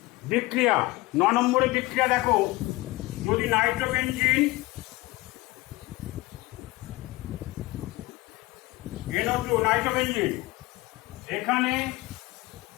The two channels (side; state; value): right; quieter; 20.2 dB